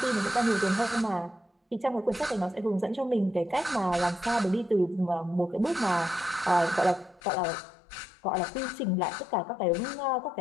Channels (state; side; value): drops out; right; at 7.2 s